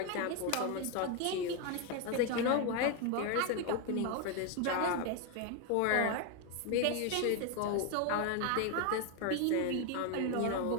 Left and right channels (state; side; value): different; both; correlation 0.01